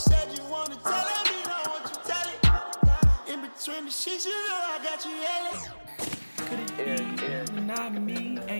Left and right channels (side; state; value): both; inverted; correlation -1.00